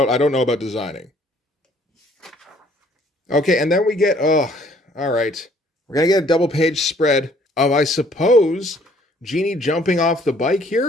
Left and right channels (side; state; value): both; normal; correlation 0.60